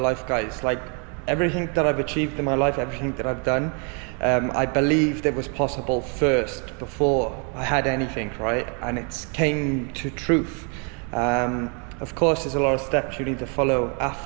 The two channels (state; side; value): quieter; left; 37.6 dB